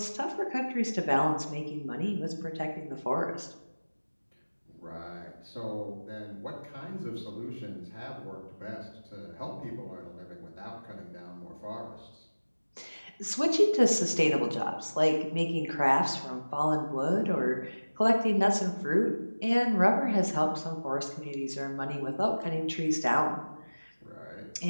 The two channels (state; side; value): inverted; both; correlation -1.00